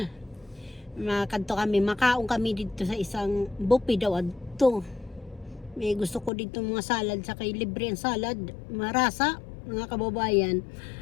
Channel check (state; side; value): drops out; right; at 6.3 s